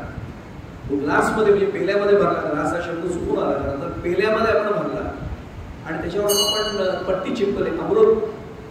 ग्लास मध्ये म्हणजे पेल्यामध्ये भरला, ग्लास हा शब्द चुकून आला तर पेल्यामध्ये आपण भरला आणि त्याच्यावर आपण पट्टी चिपकले अमृत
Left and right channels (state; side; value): identical; both; correlation 1.00